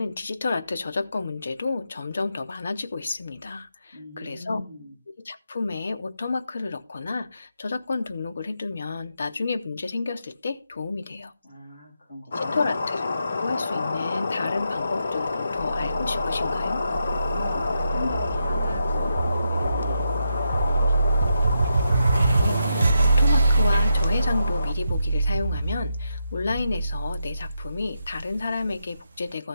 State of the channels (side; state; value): both; inverted; correlation -0.83